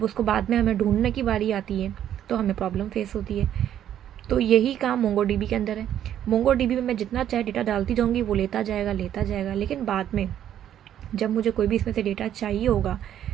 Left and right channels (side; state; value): left; quieter; 10.6 dB